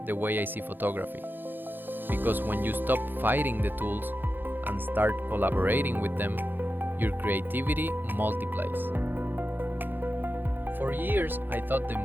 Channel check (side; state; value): left; late; 0.094 ms